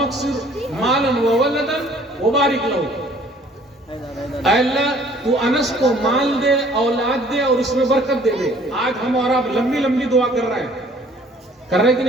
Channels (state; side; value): normal; both; correlation 0.56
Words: अक्सिर मालन व वलदन व बारिक लहू। अल्लाह तू अनस को माल दे, औलाद दे और उसमें बरकत दे दे। आज हम और आप लंबी लंबी दुआ कर रहे हैं, कर रहे कि